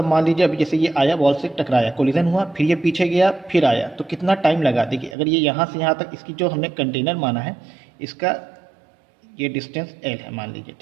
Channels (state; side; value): drops out; left; at 5.2 s